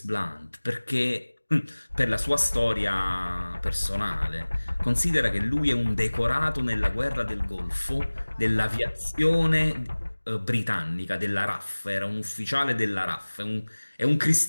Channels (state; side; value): inverted; both; correlation -1.00